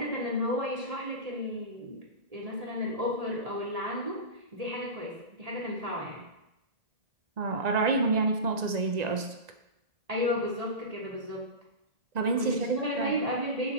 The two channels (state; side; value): late; left; 1.9 ms